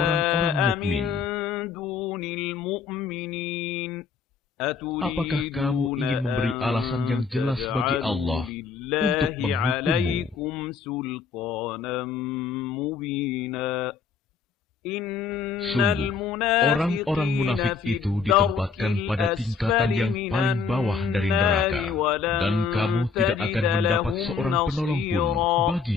mukmin. Apakah kamu ingin memberi alasan yang jelas bagi Allah untuk menghukummu? Sungguh, orang-orang munafik itu ditempatkan pada tingkatan yang paling bawah dari neraka, dan kamu tidak akan mendapat seorang penolong pun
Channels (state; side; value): quieter; right; 5.5 dB